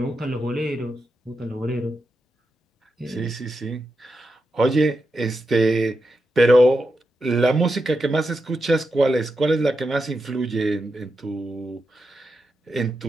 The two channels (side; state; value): both; normal; correlation 0.87